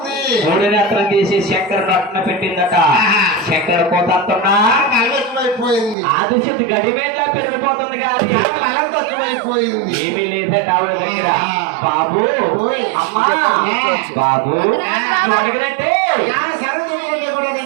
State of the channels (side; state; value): left; drops out; at 6.0 s